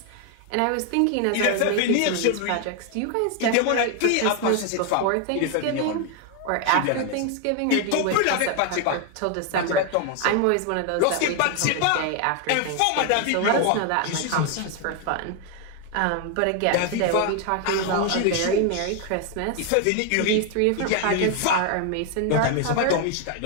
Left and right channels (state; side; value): different; both; correlation 0.01